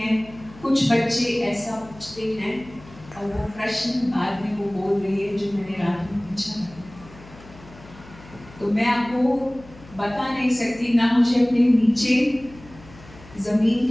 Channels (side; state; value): left; noise; hum, 20 dB below the sound